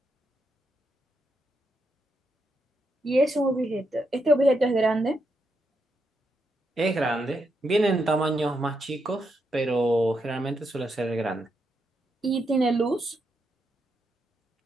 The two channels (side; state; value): both; normal; correlation 0.82